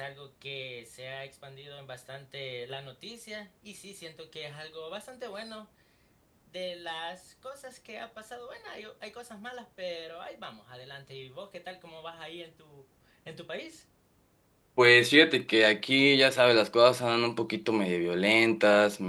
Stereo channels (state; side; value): identical; both; correlation 1.00